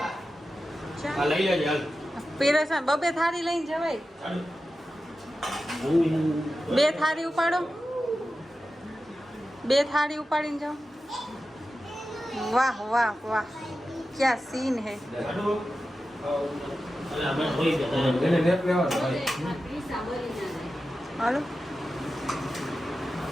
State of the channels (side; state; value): both; normal; correlation 0.93